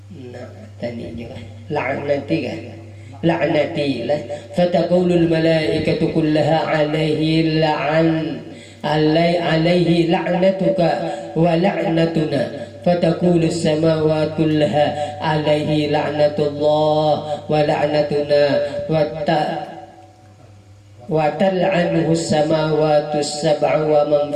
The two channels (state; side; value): identical; both; correlation 1.00